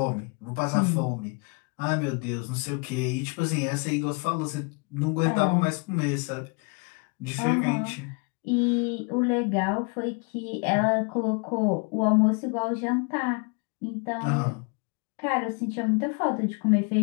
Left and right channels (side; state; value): right; quieter; 33.5 dB